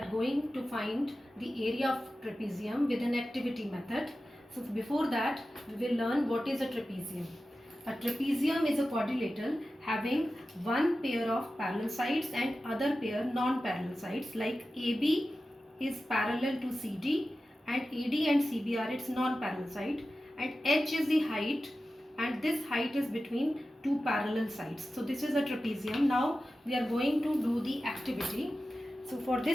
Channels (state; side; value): normal; both; correlation 0.94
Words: going to find the area of trapezium with an activity method. So before that we will learn what is a trapezium. A trapezium is a quadrilateral having one pair of parallel sides and other pair non-parallel sides, like AB is parallel to CD and AD and CB are its non-parallel side, and H is the height, and this height is between two parallel sides. So this is a trapezium. Now we are going to do the activity. So for